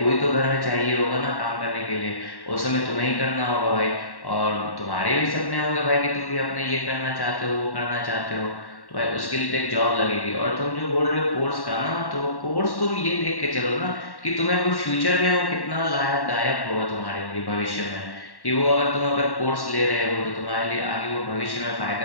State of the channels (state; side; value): late; right; 1.1 ms